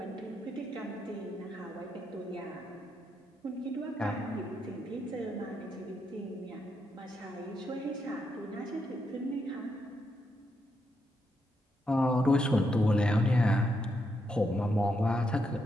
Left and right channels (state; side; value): normal; both; correlation 0.80